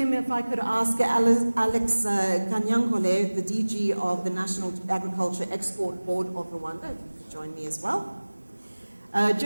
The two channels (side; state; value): both; inverted; correlation -1.00